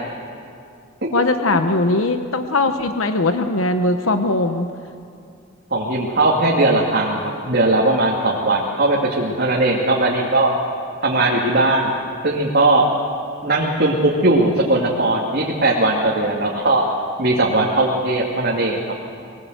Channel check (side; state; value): both; normal; correlation -0.11